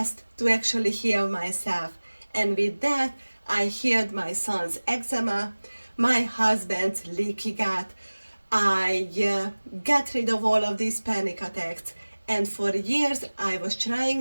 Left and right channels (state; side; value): inverted; both; correlation -1.00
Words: to actually heal myself. And with that, I healed my son's eczema, my husband's leaky gut. I got rid of all of these panic attacks. And for years, I was